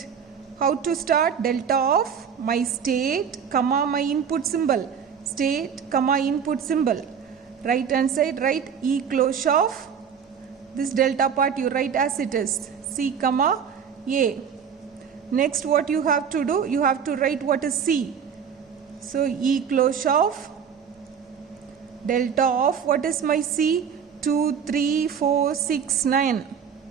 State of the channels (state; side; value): quieter; left; 7.3 dB